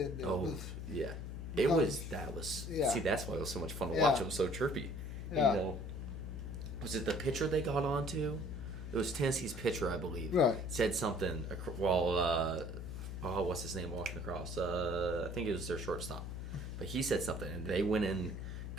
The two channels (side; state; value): left; noise; hum, 6 dB below the sound